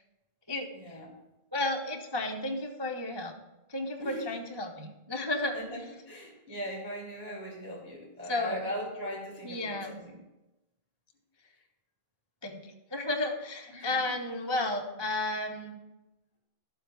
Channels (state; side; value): late; left; 1.3 ms